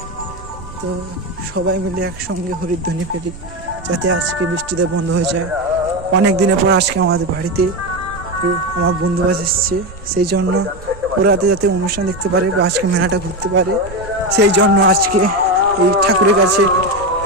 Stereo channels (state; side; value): noise; right; rumble, 17 dB below the sound